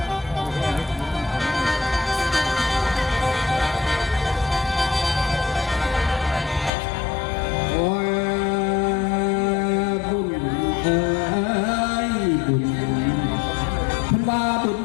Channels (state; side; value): drops out; right; at 6.7 s